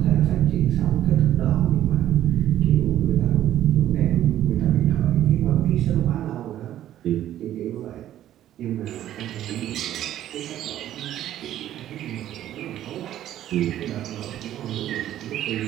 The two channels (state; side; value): quieter; left; 12.3 dB